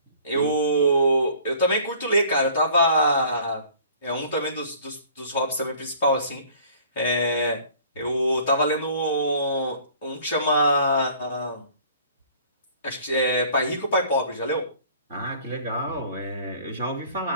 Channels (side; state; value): both; inverted; correlation -0.52